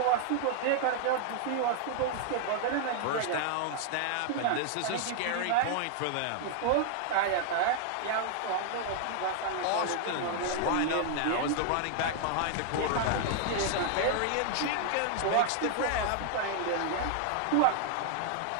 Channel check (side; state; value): both; different; correlation 0.00